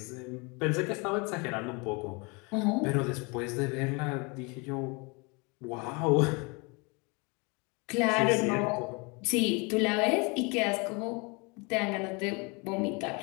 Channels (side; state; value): right; quieter; 29.6 dB